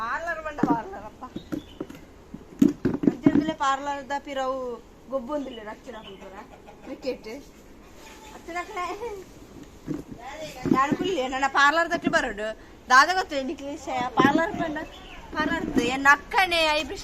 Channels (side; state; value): both; identical; correlation 1.00